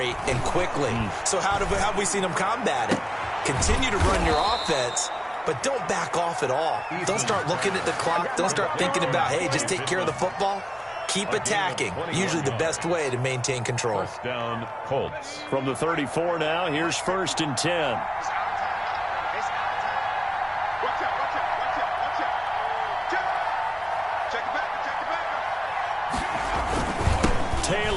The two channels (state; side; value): identical; both; correlation 1.00